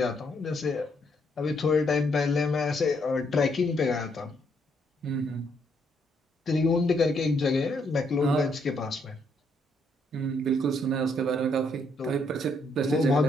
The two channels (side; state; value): both; normal; correlation 0.73